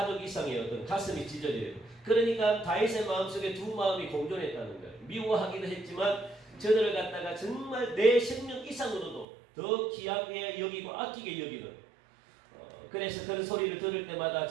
이상의 어떤 가슴이 찢어지고. 그러니까 다윗의 마음속에 두 마음이 공존했다는 거예요. 미워하기도 했지만 저들을 갖다가 정말 내 생명 이상으로도 더 귀하게 여기고 아끼게 여기는, 그래서 그런 소리를 들을 때마다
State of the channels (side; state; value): left; drops out; at 9.2 s